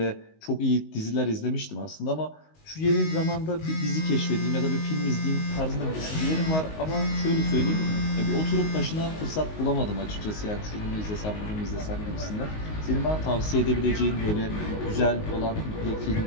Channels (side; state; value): right; late; 19 ms